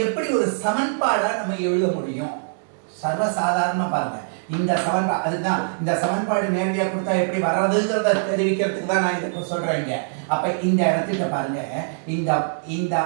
எப்படி ஒரு சமன்பாடா நம்ம எழுத முடியும்? சர்வசாதாரணமா பாருங்க, இந்த சமன்பாடு, அதுதான் இந்த சமன்பாடு நேரடியாக கொடுத்தா எப்படி வர்றதுங்கிறத தெரிவிக்கிறதுக்கு தான் நான் இதை சொல்றேங்க. அப்ப இந்த இடத்துக்கு பாருங்க, இந்த இந்த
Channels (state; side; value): silent; left; digital silence